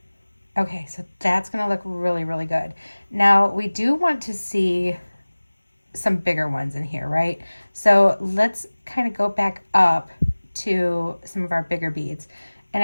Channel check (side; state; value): both; inverted; correlation -1.00